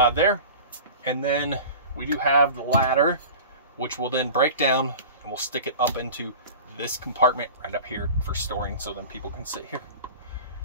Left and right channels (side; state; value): both; inverted; correlation -0.36